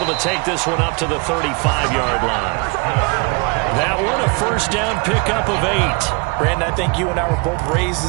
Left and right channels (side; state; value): left; quieter; 30.3 dB